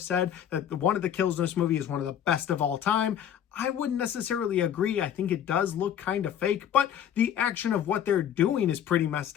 said that one of the kills in this movie is one of the best of all time. I wouldn't necessarily agree. I think it does look kind of fake, but the action of what they're doing is pretty messed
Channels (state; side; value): quieter; right; 9.6 dB